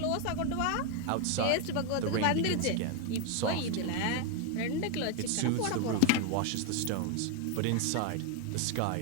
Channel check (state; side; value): different; both; correlation 0.01